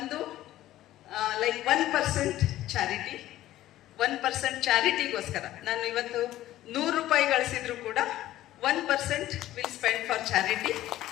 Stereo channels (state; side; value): quieter; right; 14.4 dB